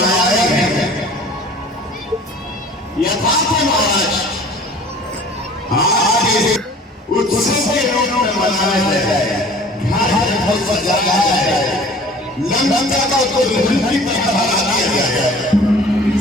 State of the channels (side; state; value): both; normal; correlation 0.47